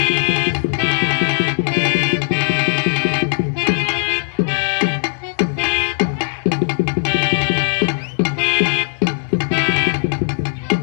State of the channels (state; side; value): silent; right; digital silence